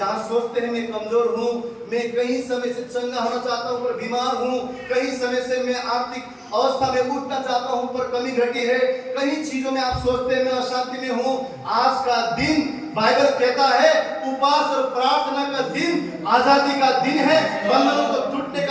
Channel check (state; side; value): identical; both; correlation 1.00